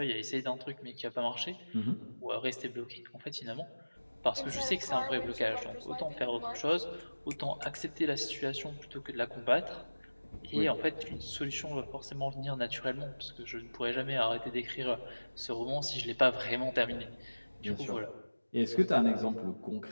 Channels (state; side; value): inverted; both; correlation -1.00